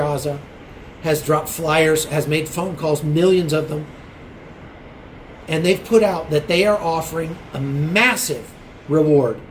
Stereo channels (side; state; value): both; identical; correlation 1.00